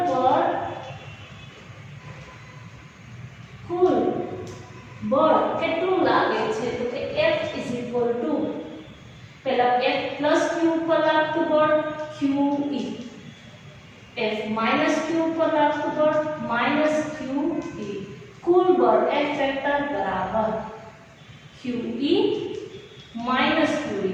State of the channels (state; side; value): identical; both; correlation 1.00